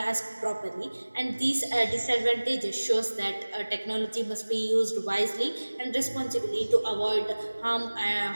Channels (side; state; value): both; inverted; correlation -1.00